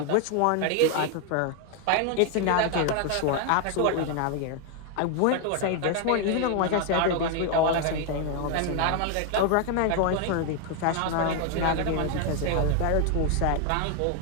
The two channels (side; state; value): both; different; correlation 0.01